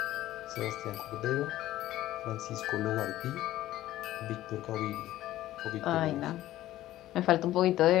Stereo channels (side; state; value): right; quieter; 14.6 dB